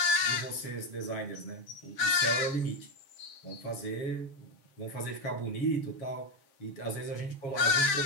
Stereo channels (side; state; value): right; late; 7.4 ms